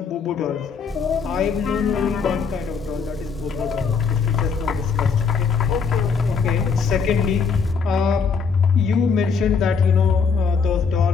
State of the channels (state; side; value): quieter; right; 5.5 dB